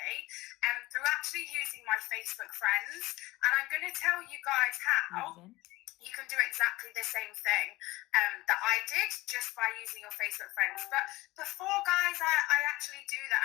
through actually using my Facebook friends. And I'm going to tell you guys how you can do exactly the same thing that I did just by using your Facebook friends. But before, guys, I actually do that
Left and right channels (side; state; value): right; quieter; 19.6 dB